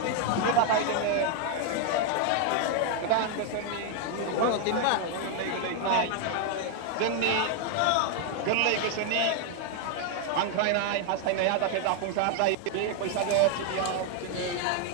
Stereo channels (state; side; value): different; both; correlation 0.00